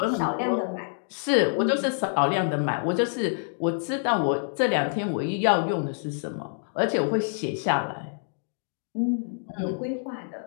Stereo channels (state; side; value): silent; right; digital silence